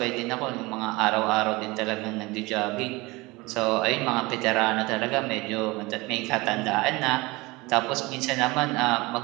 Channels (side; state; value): left; quieter; 23.0 dB